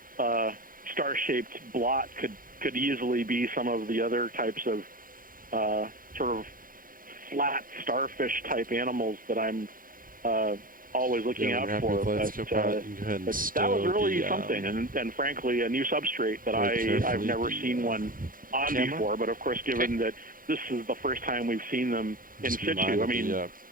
star-shaped blot could easily be some of the other types of sort of flat starfish type animals that I'm always looking out for. But that was really something, and frankly, a new substrate that I've never seen one on before. But of course, given that this is the first time we've seen them in situ, I mean,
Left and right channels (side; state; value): left; late; 0.40 ms